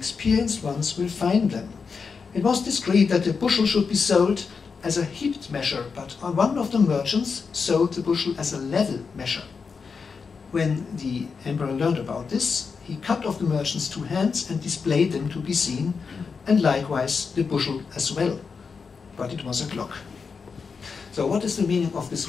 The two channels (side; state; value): right; quieter; 5.4 dB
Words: ones will find them. It was decreed that the bushel should be sold as a heaped measure, but one of the merchants sold the bushel as a level measure. When the emperor learned about this, he cut off the merchant's 2 hands and displayed them to be seen, and likewise the bushel as well. But it was a clock. So what is the meaning of this